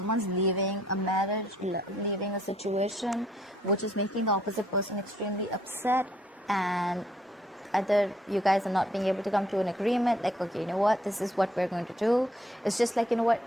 leaving a marriage, leaving a situation, which is making the opposite person extremely upset, and either you guys are not being able to come to an agreement, like, okay, you know what, this is what we're going to do. It's just like, you know what,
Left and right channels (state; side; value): normal; both; correlation 0.66